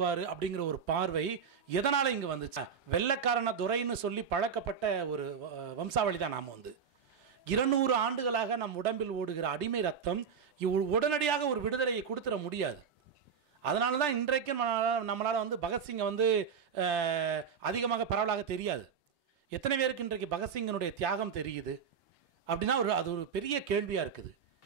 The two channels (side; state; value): left; quieter; 6.7 dB